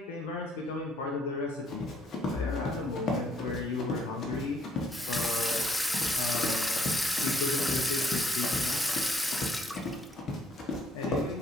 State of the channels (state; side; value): normal; both; correlation 0.67